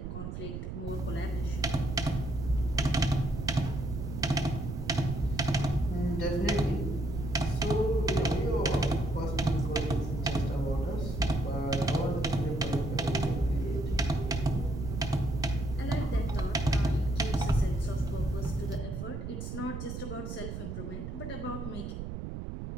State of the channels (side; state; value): right; noise; rumble, 6 dB below the sound